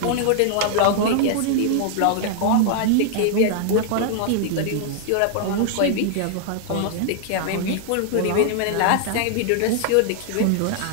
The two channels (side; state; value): both; different; correlation -0.01